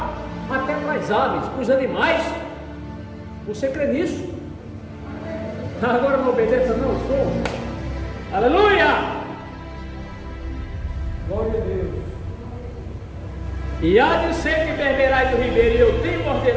até para as aves, para os animais. Você crê nisso? Agora não obedeça, não, estou. Aleluia! Glória a Deus. E há de ser que beberás do ribeiro, e eu tenho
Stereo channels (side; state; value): both; identical; correlation 1.00